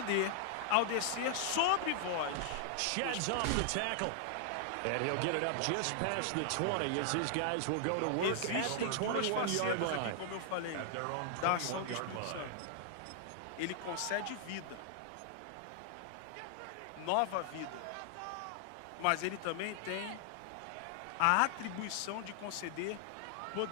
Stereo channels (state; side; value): different; both; correlation 0.00